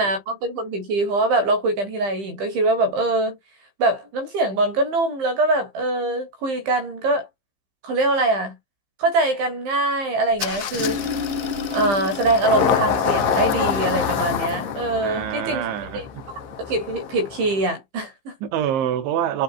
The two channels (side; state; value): left; late; 15 ms